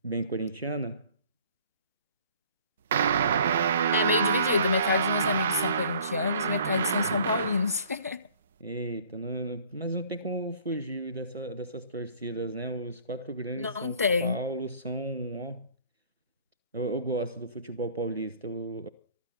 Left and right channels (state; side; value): inverted; both; correlation -0.53